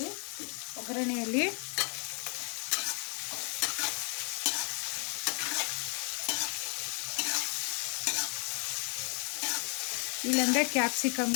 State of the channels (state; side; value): quieter; right; 35.3 dB